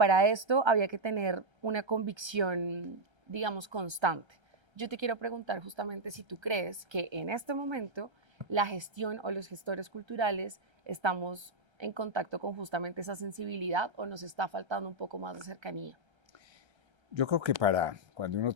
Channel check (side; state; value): left; late; 1.3 ms